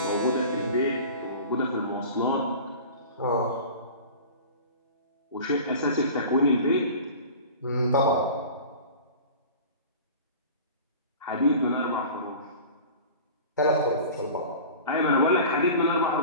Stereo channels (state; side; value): inverted; both; correlation -0.38